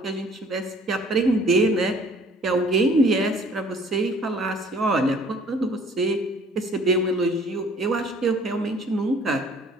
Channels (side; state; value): both; normal; correlation 0.55